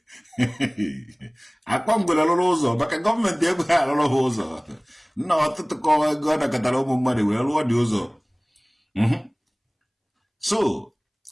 akwa ngwere rụrụ ụzọ maka gọọmenti ego ha arụrụ ha ụzọ nna ọtụtụ kọwa ego ọ nakọtara ụmụ mmadụ wee rụọ dị ụzọ so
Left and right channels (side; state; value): both; identical; correlation 1.00